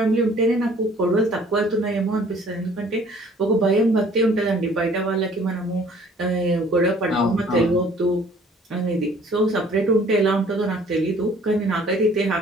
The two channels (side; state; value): both; normal; correlation 0.55